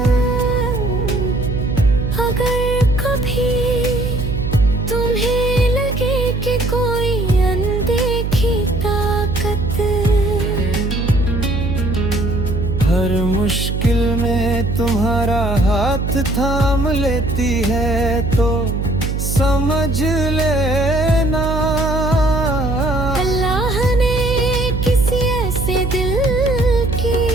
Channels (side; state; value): right; noise; hum, 2 dB below the sound